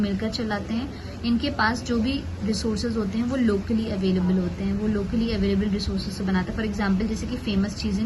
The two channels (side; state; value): both; identical; correlation 1.00